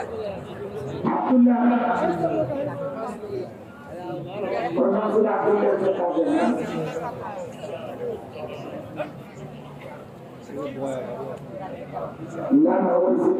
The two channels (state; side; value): identical; both; correlation 1.00